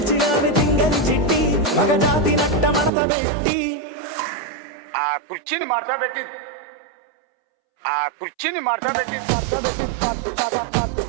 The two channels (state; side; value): drops out; left; at 2.9 s